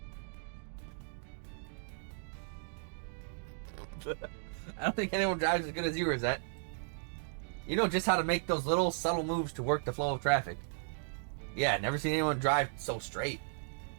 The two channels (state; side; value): silent; left; digital silence